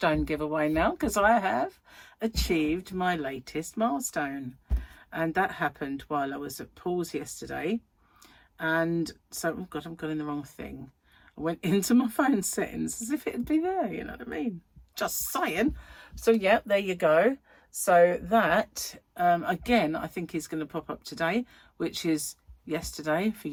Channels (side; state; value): both; identical; correlation 1.00